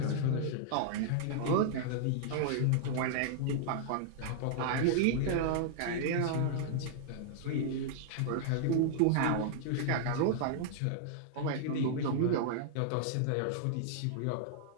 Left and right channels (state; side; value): different; both; correlation -0.01